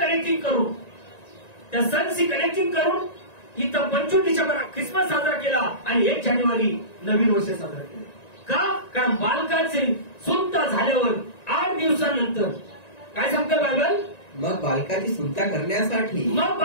करून त्या सणशी कनेक्टिंग करून इथं 25 डिसेंबर ख्रिसमस साजरा केला आणि 1 जानेवारी नवीन वर्ष साजरा केलं. का? कारण बालकाचे सुंता झाल्यावर 8 दिवसानंतर काय सांगतं बायबल? मग बालकाची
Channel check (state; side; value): late; right; 1.9 ms